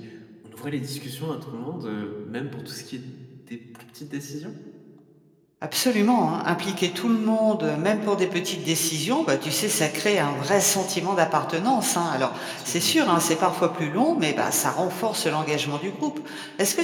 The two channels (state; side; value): identical; both; correlation 1.00